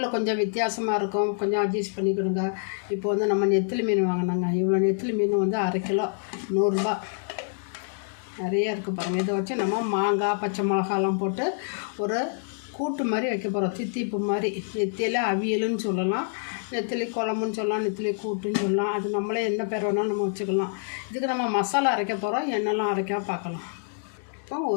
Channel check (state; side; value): silent; right; digital silence